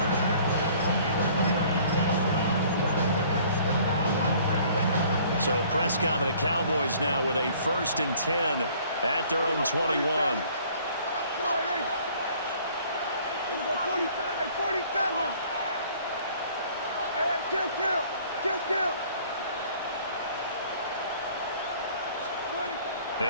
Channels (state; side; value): inverted; both; correlation -0.55